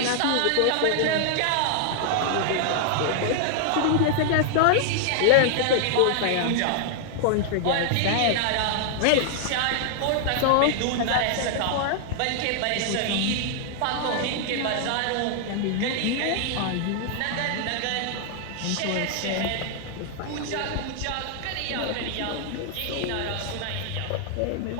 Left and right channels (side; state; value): both; different; correlation 0.00